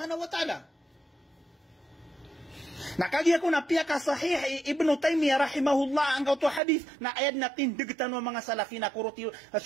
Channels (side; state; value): left; drops out; at 6.6 s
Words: wa ta'ala. Nakagi ako na piya ka sahih Ibn Taymiyah rahimahullah ang kauto hadith na ayad na tindigtan ng mga salafi na kuruti